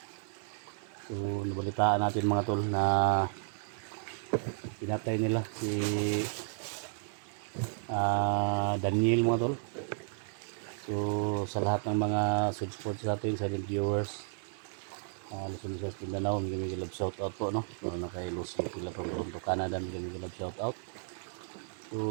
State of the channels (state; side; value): silent; left; 56 dB below the other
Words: So, nabalitaan natin mga tol na pinatay nila si Daniel mga tol. So, sa lahat ng mga support sa atin, sa viewers, Luzon, Visayas, Mindanao, may love shout out po, no? So, na kay Lucy Pila from Toronto, Canada, may love shout out.